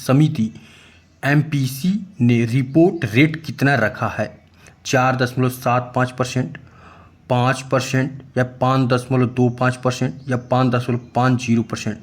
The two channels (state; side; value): identical; both; correlation 1.00